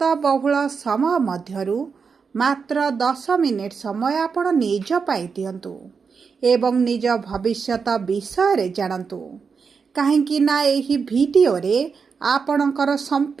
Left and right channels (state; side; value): quieter; left; 5.6 dB